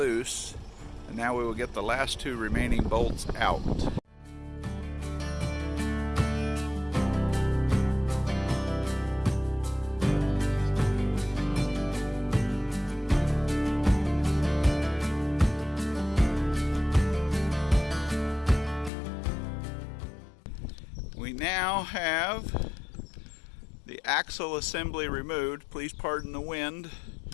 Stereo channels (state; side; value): drops out; right; at 18.9 s